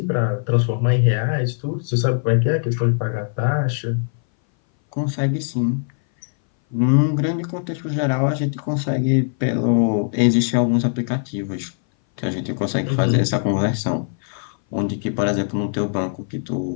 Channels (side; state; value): right; silent; 60 dB below the other